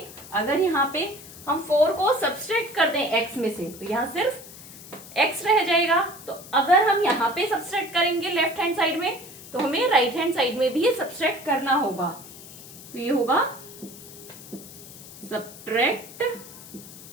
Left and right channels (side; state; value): left; noise; hiss, 16 dB below the sound